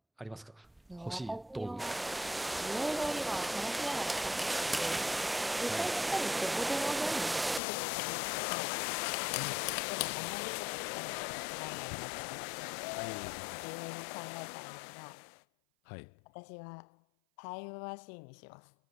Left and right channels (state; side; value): drops out; right; at 7.6 s